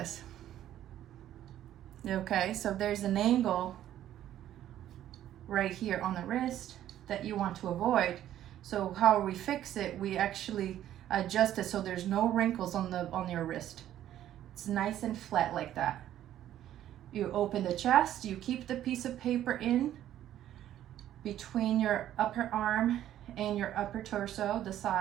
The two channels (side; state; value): left; quieter; 12.0 dB